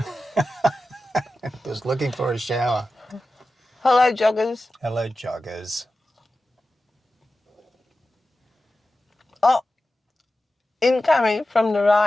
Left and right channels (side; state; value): both; normal; correlation 0.93